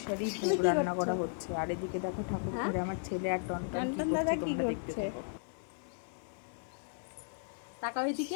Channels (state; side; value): silent; right; digital silence